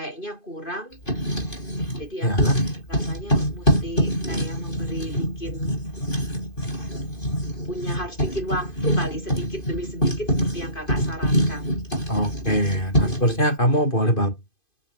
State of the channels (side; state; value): right; late; 2.5 ms